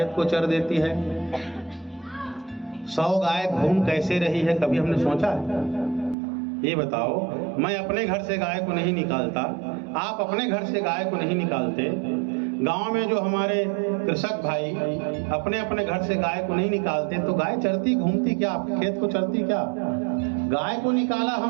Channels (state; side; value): drops out; left; at 6.2 s